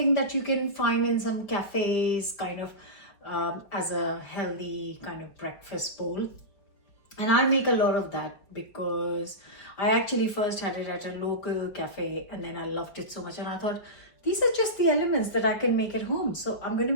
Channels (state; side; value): late; right; 4.8 ms